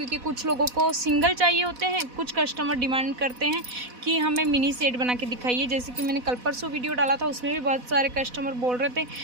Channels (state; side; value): late; left; 4.1 ms